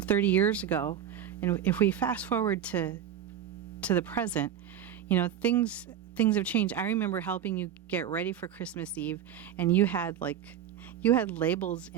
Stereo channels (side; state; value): left; quieter; 9.6 dB